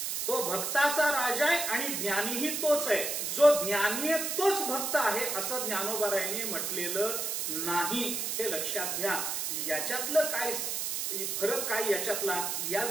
तो भक्ताचा राजा आहे आणि ज्ञानीही तोच आहे. जो ज्ञानी आहे तोच भक्त आहे असं ज्ञानोबरांनी म्हटलेलं नाही, हे लक्षात घ्या. याच्यातलं काय फरक, काय याच्यातला, या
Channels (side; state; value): right; noise; hiss, 1 dB below the sound